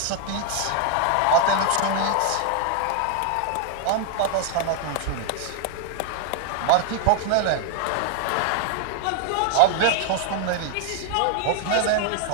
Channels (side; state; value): both; different; correlation 0.00